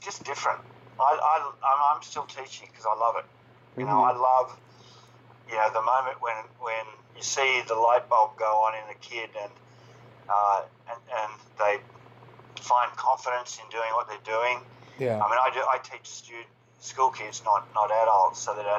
different. I'm still teaching because I love it. You know, I love, the moment when you see the light bulb go on in a kid and they find confidence in doing what they're doing. Yeah. I mean, I teach school kids, not adults, so that a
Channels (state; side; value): identical; both; correlation 1.00